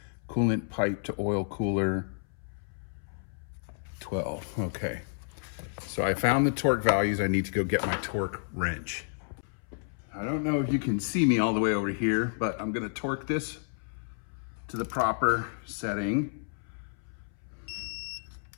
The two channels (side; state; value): right; silent; 57 dB below the other